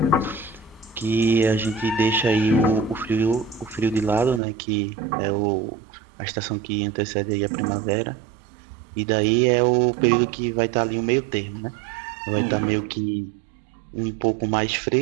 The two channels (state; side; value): drops out; left; at 4.4 s